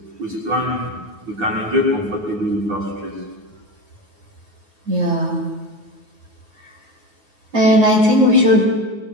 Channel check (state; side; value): late; left; 9.5 ms